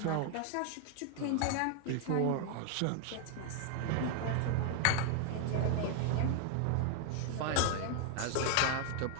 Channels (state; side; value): different; both; correlation 0.00